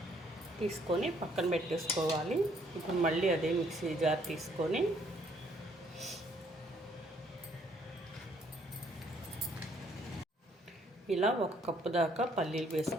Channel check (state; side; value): normal; both; correlation 0.66